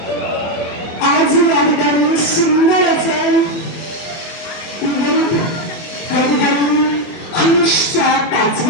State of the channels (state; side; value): late; right; 24 ms